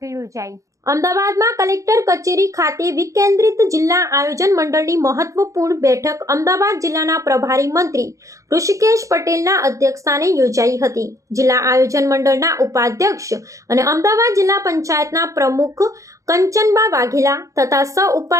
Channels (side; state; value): left; late; 0.15 ms